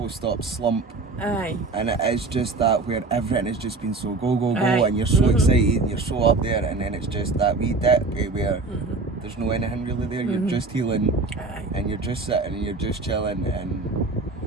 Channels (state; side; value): quieter; left; 3.6 dB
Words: slump. Aye. And it is just that where everything has just been so go, and you're so excited and you're so up there, and then it's just that wee dip where there's no anything really there. You're just healing, and you're just sitting and you're just chilling. And